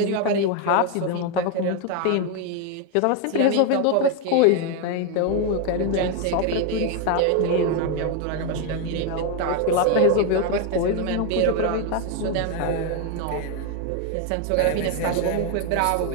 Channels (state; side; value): different; both; correlation 0.01